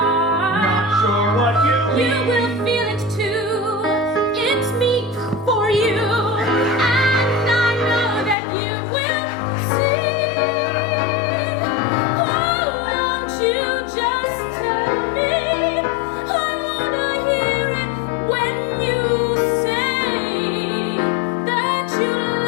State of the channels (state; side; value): drops out; right; at 8.3 s